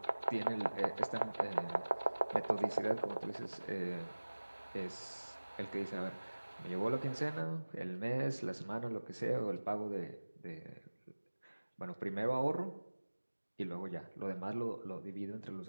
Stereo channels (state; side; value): inverted; both; correlation -1.00